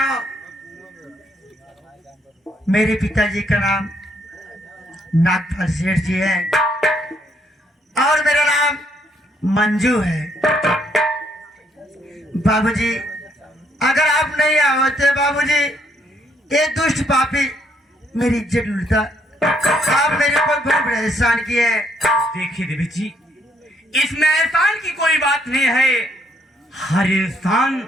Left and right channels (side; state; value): both; normal; correlation 0.71